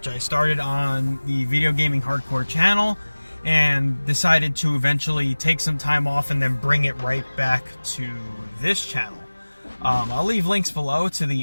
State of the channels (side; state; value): both; inverted; correlation -1.00